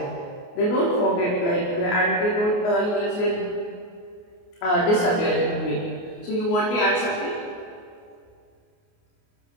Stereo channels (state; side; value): late; right; 29 ms